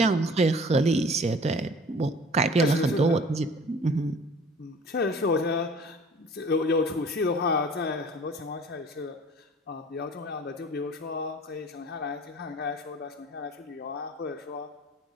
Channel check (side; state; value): both; normal; correlation 0.47